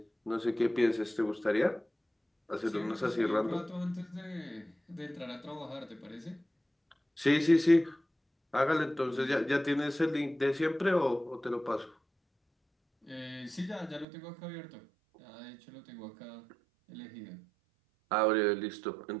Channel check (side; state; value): left; drops out; at 14.1 s